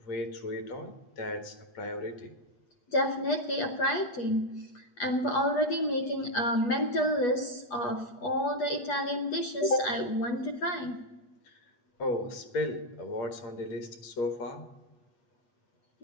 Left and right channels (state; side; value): late; right; 8.3 ms